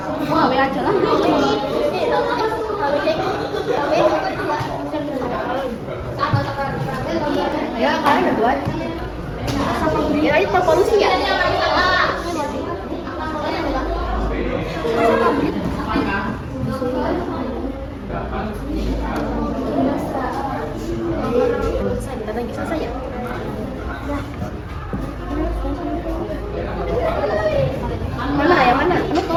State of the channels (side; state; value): both; identical; correlation 1.00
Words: Oh, ambil aja lah. Ya, kalian udah buat. Ya, itu polusi ya. Selesai, bentar lagi selesai ya.